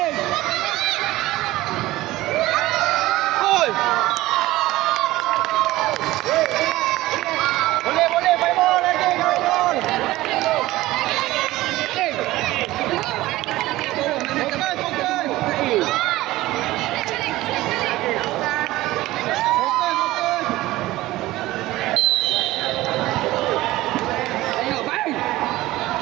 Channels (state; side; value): quieter; left; 17.4 dB